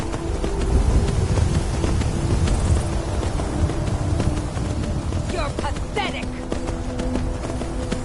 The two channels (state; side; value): identical; both; correlation 1.00